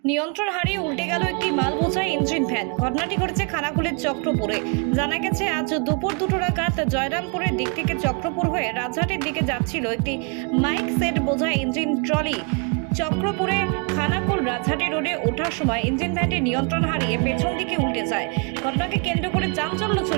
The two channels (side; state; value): left; quieter; 35.9 dB